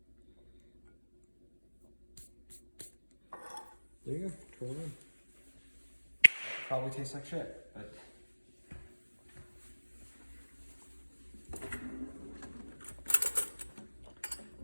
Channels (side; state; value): both; inverted; correlation -1.00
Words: there you go. Twirl it in. Probably tastes like shit, but